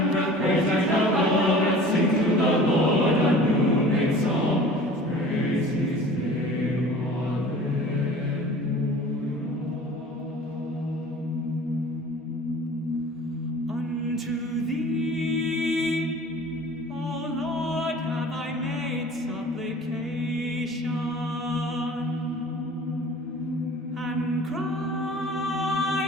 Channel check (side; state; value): both; normal; correlation 0.44